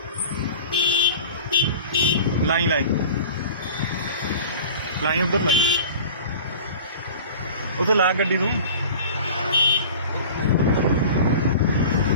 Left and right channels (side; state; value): both; inverted; correlation -0.40